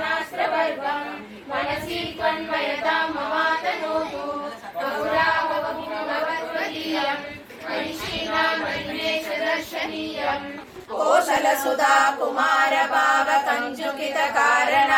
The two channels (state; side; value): identical; both; correlation 1.00